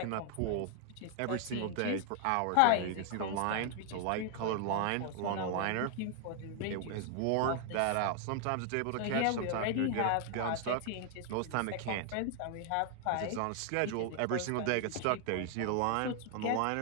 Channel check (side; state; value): both; different; correlation 0.00